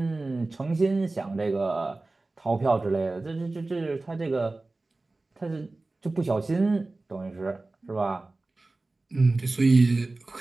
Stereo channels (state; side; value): quieter; left; 3.2 dB